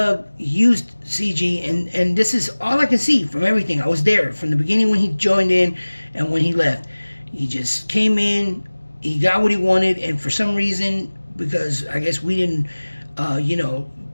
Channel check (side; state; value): both; inverted; correlation -1.00